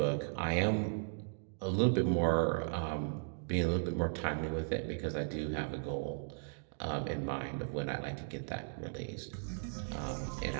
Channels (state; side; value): silent; left; digital silence